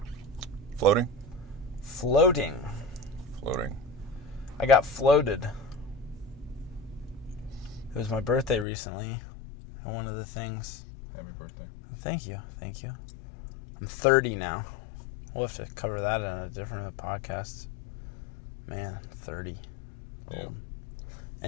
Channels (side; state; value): right; drops out; at 8.7 s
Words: Floating. I got floated. It was my birthday recently. And one of the things... Happy birthday. Thank you. I'm 30 now. We'll have to cover that in a different podcast. Man, 30. Yeah.